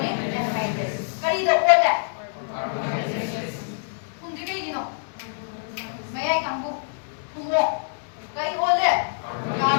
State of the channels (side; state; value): right; silent; digital silence